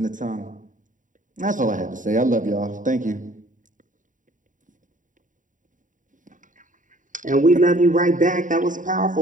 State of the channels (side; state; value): left; late; 0.38 ms